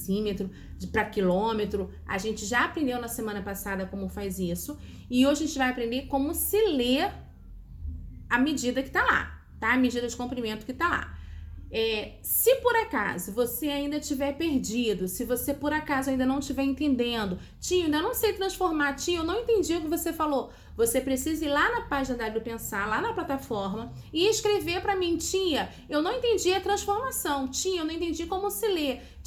para quilômetro. A gente já aprendeu na semana passada como faz isso e hoje a gente vai aprender como se lê a medida que está lá, tá? A medida de comprimento que está lá. Se por acaso você ainda estiver perdido, se você por acaso ainda não estiver entendendo, tia, ainda não sei transformar, tia, eu não entendi o que você falou, você precisa ir lá na página da Pensar, lá na plataforma e escrever para mim, tia, eu não entendi a transformação, tia, eu não entendi como se lê,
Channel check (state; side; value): identical; both; correlation 1.00